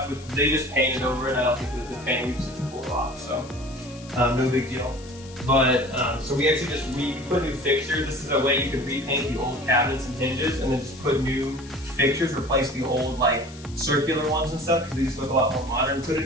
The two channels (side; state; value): left; noise; hiss, 20 dB below the sound